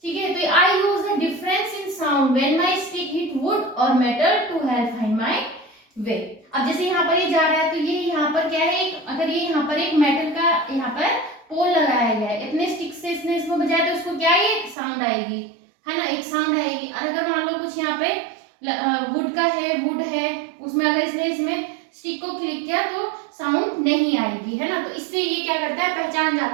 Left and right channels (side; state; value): left; drops out; at 14.8 s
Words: ठीक है, तो I use the difference in sound when my stick hit wood or metal to help find my way. अब जैसे यहाँ पर ये जा रहा है, तो ये यहाँ पर क्या है, अगर ये यहाँ पर एक मेटल का यहाँ पर पोल लगाया गया है, इतने स्टिक से इसने इसको बजाया तो उसको क्या है, एक साउंड आएगी, है ना, एक साउंड आएगी। और अगर मान लो कुछ यहाँ पे वुड का है, वुड है, उसमें अगर इसने इसमें स्टिक को क्लिक किया तो साउंड नहीं आएगी, है ना। तो इससे ये क्या करता है, पहचान